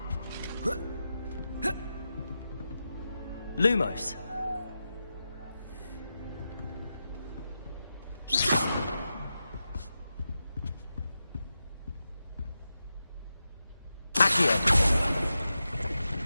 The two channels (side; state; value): both; inverted; correlation -0.90